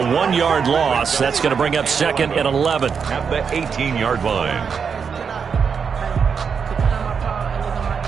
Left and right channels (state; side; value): quieter; left; 6.3 dB